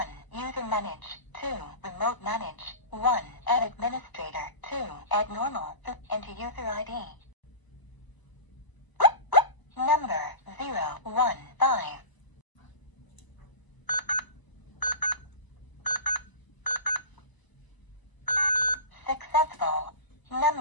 User manage. 2. Remote manage. 1. Add administrator. 2. Add normal. Enter user ID. Number 015. Successful.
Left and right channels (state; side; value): late; right; 1.0 ms